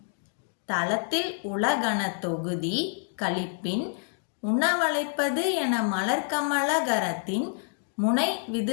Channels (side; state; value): right; silent; digital silence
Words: தளத்தில் உலகன தொகுதி கழிப்பின் உணவளைப்பது என மலர்கமலகரத்தின் முனை